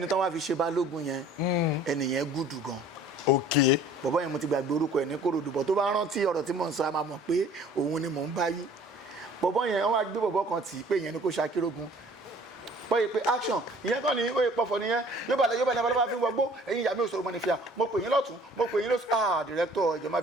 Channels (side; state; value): both; normal; correlation 0.52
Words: tán wá fi ṣe balógun yẹn ẹnìyẹn gùdù gan bọ̀bọ́ yẹn mo ti gbàgbé orúkọ ẹ̀ ní Kòròdú bọ̀ tó bá rántí ọ̀rọ̀ tí mò ń sọ a máa mọ̀ pé òun ni mò ń bá yí bọ̀bọ́ yẹn wọ́n wá gbé bọ̀bọ́ kan tì í pé ìyẹn ni kò ṣakírógun bọ́yì pé action ìyẹn kàn ní oyè pọ̀fọ̀ nìyẹn yóò bá lẹ́bàá fi ń wọgbó ẹ̀yin ìyá mi ò sọ̀rọ̀ mọ́ ní fìyà mo pè yín lọ́tún mo pè yín lọ́sùn director ìjọ má